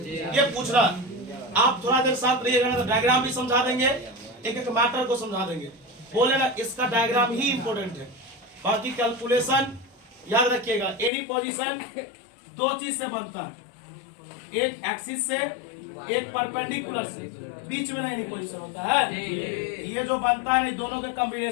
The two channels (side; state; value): right; drops out; at 11.1 s